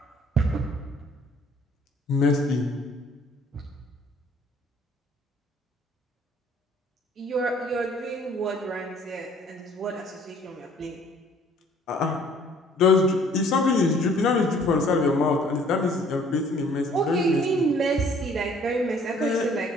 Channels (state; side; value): normal; both; correlation 0.57